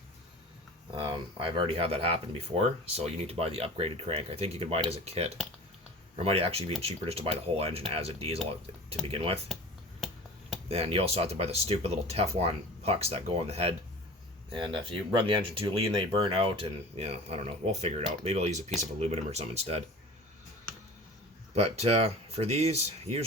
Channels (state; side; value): normal; both; correlation 0.38